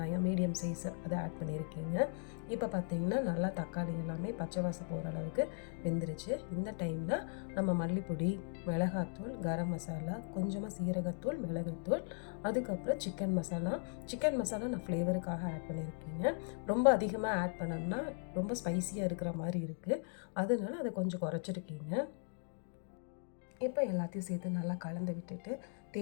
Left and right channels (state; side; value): silent; right; 52 dB below the other